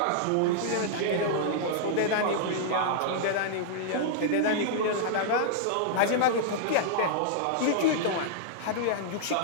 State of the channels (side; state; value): both; different; correlation -0.01